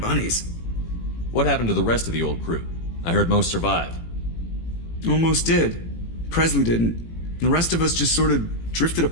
bunnies. What happened to the rest of the old crew? I heard most survived. Almost did. Presley didn't. The rest of us just sort of drifted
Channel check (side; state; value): right; late; 18 ms